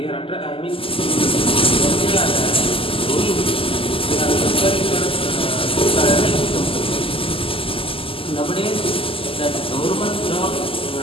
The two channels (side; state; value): right; late; 0.26 ms